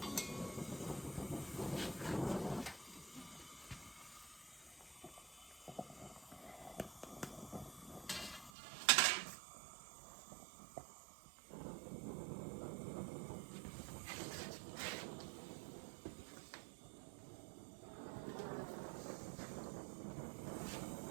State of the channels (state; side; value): drops out; left; at 8.5 s